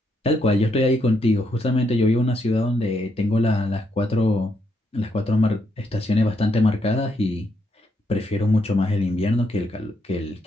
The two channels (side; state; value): both; normal; correlation 0.77